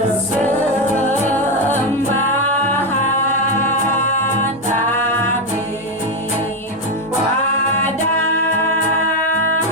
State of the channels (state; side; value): normal; both; correlation 0.08